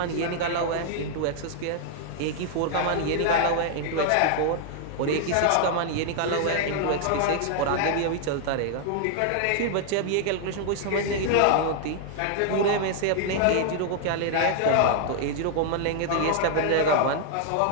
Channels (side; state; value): both; different; correlation 0.00